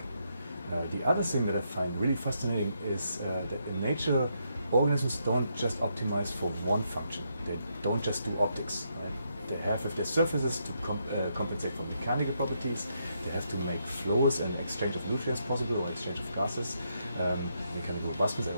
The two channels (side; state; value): both; inverted; correlation -0.78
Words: The other thing that I find really fascinating is that in nature, organisms don't just optimize for one function. They don't just do optics. Right? They have, if their surfaces, to compensate for mechanical properties. They have to make flows and exchange of nutrients possible, or exchange of gases. Mechanical robustness, I